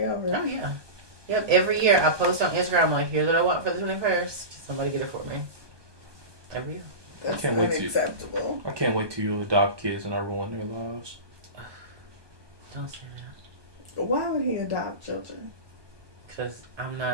over? Oh, yeah. Yep, every year I post on Instagram, I'm like, here's what I want for the 21st. Somebody get it for me. Every year. That's I can't wait unacceptable. I can't wait till you adopt kids and I ruin their lives. Don't say that. Why would he adopt children? Because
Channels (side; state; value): left; late; 1.2 ms